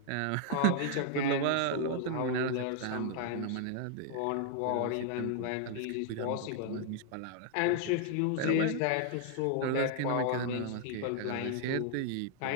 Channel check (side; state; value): both; different; correlation 0.00